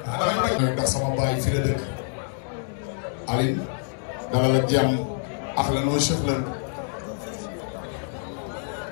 ndax sama baay fi la dëkk Aline dalal ak jàmm ahlan wa sahlan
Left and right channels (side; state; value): right; silent; digital silence